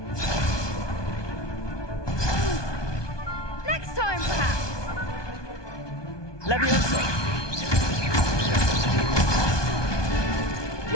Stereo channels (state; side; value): late; right; 1.2 ms